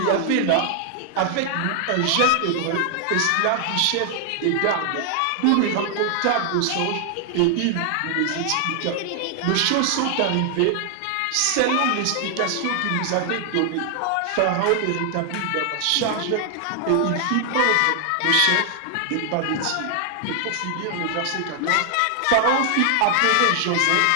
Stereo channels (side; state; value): both; different; correlation 0.00